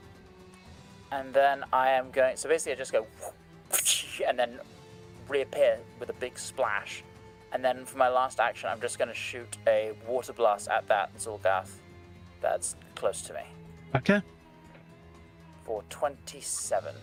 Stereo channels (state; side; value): identical; both; correlation 1.00